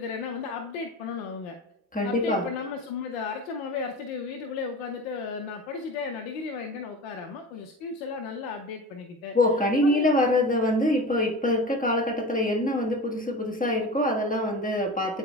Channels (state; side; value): normal; both; correlation 0.32